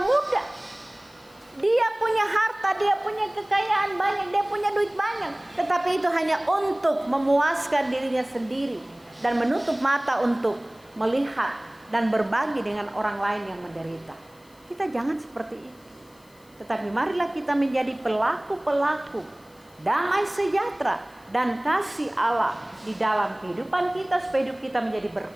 Dia punya harta, dia punya kekayaan banyak, dia punya duit banyak, tetapi itu hanya untuk memuaskan dirinya sendiri dan menutup mata untuk melihat dan berbagi dengan orang lain yang menderita. Kita jangan seperti itu. Tetapi marilah kita menjadi pelaku-pelaku damai sejahtera dan kasih Allah di dalam kehidupan kita, supaya hidup kita menjadi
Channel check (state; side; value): noise; left; hiss, 29 dB below the sound